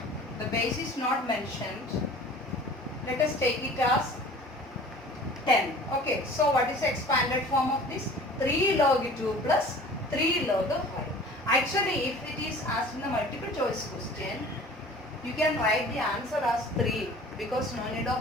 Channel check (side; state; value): both; normal; correlation 0.45